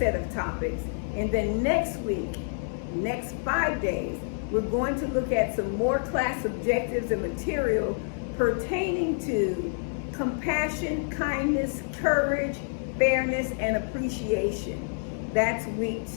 of topics. And then next week, next 5 days, we're going to look at some more class objectives and material pertaining to compassion, kindness, courage, fairness, and appreciation. That's week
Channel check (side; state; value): right; silent; 59 dB below the other